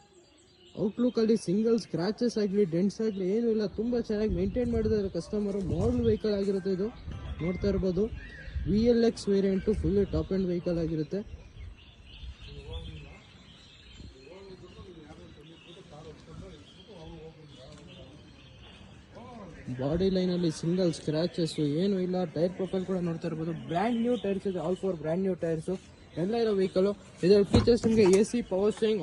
ಔಟ್ಲುಕ್ ಅಲ್ಲಿ ಸಿಂಗಲ್ ಸ್ಕ್ರಾಚಸ್ ಆಗಲಿ ಡೆಂಟ್ಸ್ ಆಗಲಿ ಏನೂ ಇಲ್ಲ, ತುಂಬಾ ಚೆನ್ನಾಗಿ ಮೇಂಟೈನ್ ಮಾಡಿದ್ದಾರೆ ಕಸ್ಟಮರ್. ಮಾಡಲ್ ವೆಹಿಕಲ್ ಆಗಿರುತ್ತೆ ಇದು. ನೋಡ್ತಾ ಇರಬಹುದು VLX variant full top end vehicle ಆಗಿರುತ್ತೆ. ಬಾಡಿ ಲೈನ್ ಅಲ್ಲಿ ಸಿಂಗಲ್ ಸ್ಕ್ರಾಚಸ್ ಏನು ಇಲ್ಲ. ಟೈರ್ ಪ್ರೊಫೈಲ್ ಕೂಡ ನೋಡ್ತಾ ಇರಬಹುದು, ಬ್ರ್ಯಾಂಡ್ ನ್ಯೂ ಟೈರ್ಸ್ ಇದೆ. ಆಲ್ 4 ಬ್ರ್ಯಾಂಡ್ ನ್ಯೂ ಟೈರ್ಸ್ ಎಲ್ಲ ಇರೋ ವೆಹಿಕಲ್. ಇದರ ಫೀಚರ್ಸ್ ನಿಮಗೆ AC power steering,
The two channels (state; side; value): identical; both; correlation 1.00